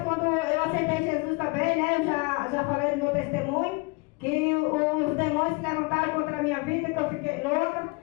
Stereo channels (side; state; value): right; quieter; 28.5 dB